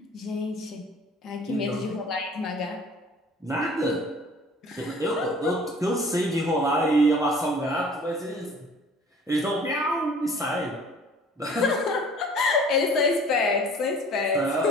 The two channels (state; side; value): normal; both; correlation 0.49